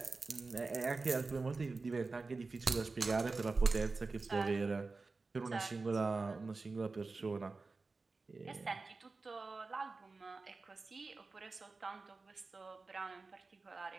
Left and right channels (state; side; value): quieter; left; 3.9 dB